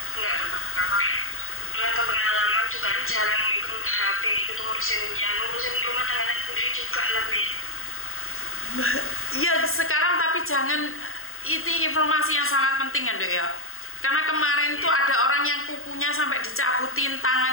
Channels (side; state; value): right; late; 0.61 ms